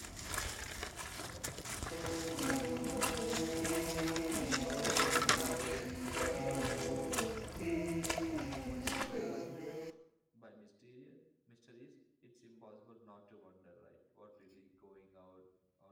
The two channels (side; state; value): both; identical; correlation 1.00